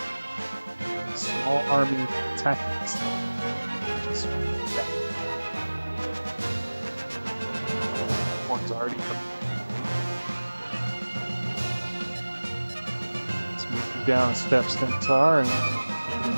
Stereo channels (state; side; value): inverted; both; correlation -1.00